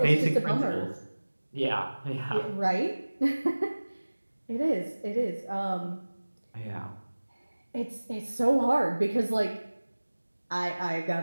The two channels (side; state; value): both; inverted; correlation -1.00